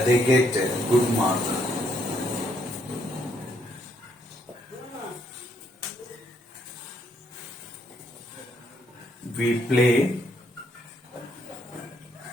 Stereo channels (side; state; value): both; normal; correlation 0.72